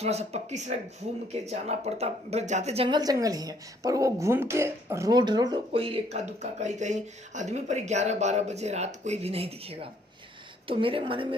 सा पक्की सड़क घूम के जाना पड़ता। बस जाते जंगल जंगल ही है, पर वो घूम के रोड कोई इक्का दुक्का कहीं कहीं आदमी, पर 11-12 बजे रात कोई भी नहीं दिखेगा। तो मेरे मन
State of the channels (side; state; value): both; normal; correlation 0.65